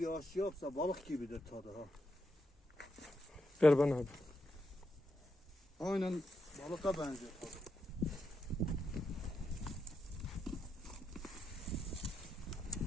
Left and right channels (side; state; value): both; normal; correlation 0.84